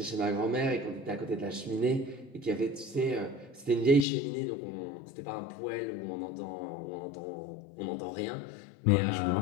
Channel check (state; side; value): drops out; right; at 4.0 s